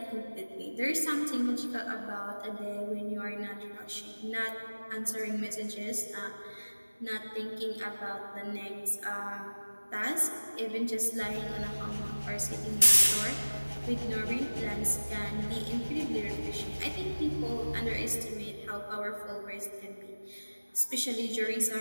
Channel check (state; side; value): inverted; both; correlation -1.00